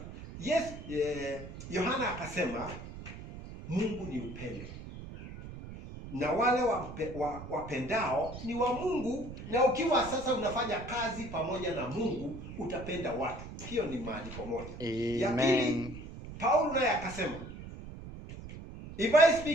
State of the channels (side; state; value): right; noise; rumble, 12 dB below the sound